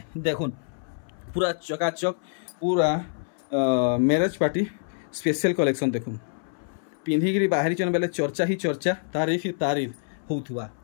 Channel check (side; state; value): right; silent; 61 dB below the other